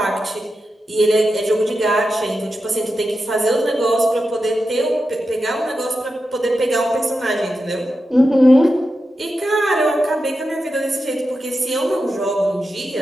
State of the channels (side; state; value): both; normal; correlation 0.90